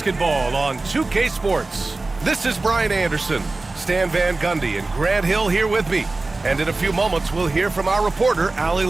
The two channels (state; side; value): quieter; left; 3.3 dB